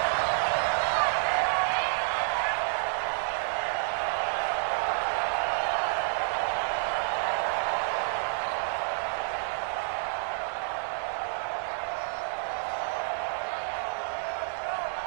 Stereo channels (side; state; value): left; silent; 58 dB below the other